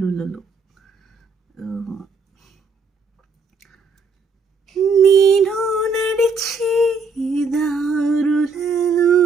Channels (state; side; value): quieter; left; 4.1 dB